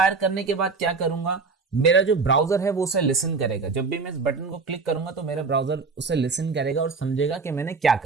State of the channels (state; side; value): quieter; left; 4.5 dB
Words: करने के बाद क्या करूंगा, मेरा जो ब्राउजर है वो उसे लिसन करेगा। जब भी मैं इस बटन को क्लिक करूंगा तो मेरा ब्राउजर उसे लिसन करेगा और समझेगा कि मैंने क्या